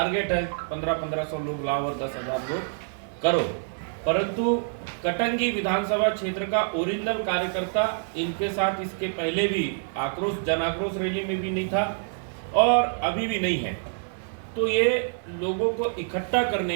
है 1500 लोग लाओ और 10,000 लोग करो, परंतु कटंगी विधानसभा क्षेत्र का ओरिजिनल कार्यकर्ता इनके साथ इसके पहले भी जन आक्रोश रैली में भी नहीं था और अभी भी नहीं है। तो ये लोगों को इकट्ठा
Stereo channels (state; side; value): silent; left; digital silence